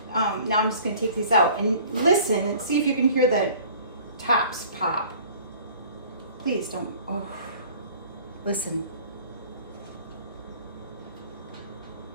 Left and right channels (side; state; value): both; inverted; correlation -0.49